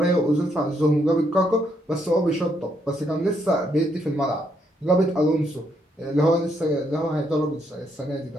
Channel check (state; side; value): normal; both; correlation 0.75